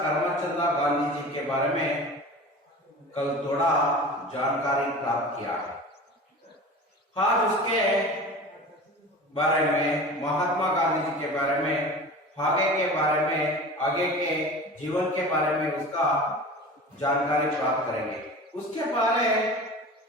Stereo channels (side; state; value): both; normal; correlation 0.36